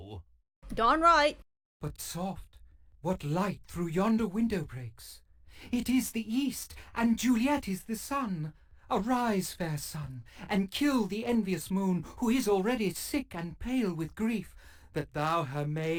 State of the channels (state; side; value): identical; both; correlation 1.00